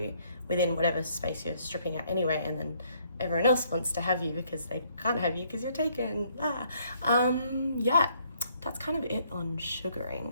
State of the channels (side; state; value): both; inverted; correlation -0.67